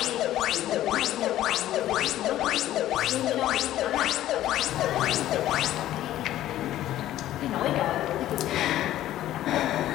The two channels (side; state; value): right; quieter; 13.5 dB